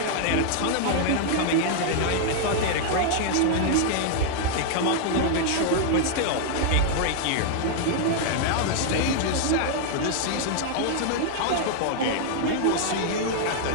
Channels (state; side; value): different; both; correlation 0.00